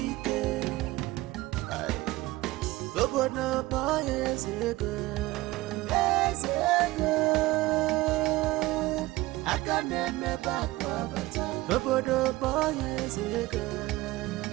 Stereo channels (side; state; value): left; quieter; 19.1 dB